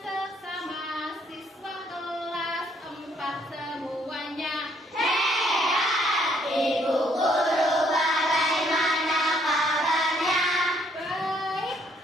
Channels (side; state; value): both; normal; correlation 0.67